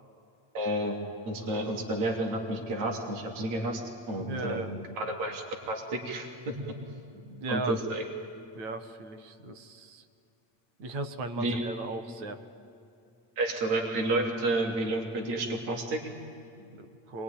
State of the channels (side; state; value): left; late; 8.6 ms